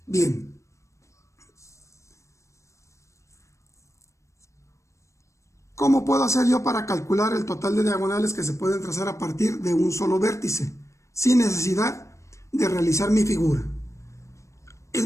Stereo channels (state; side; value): late; right; 0.15 ms